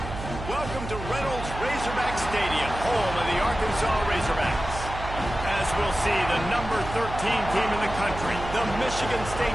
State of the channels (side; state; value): right; noise; hum, 8 dB below the sound